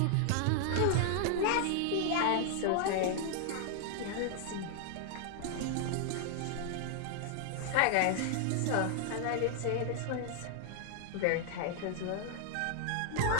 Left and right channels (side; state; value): both; different; correlation 0.00